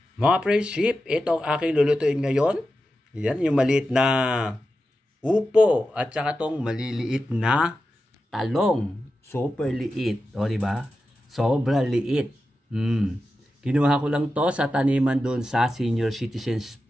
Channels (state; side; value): normal; both; correlation 0.91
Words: Mga friendship, ito ang aking lulutuin ngayon. Yan, yung maliit na upo at saka tong maliliit na talong. Super liit. O, diba? Sobra liit. Kinuha ko lang to sa taniman doon sa Senior Citizens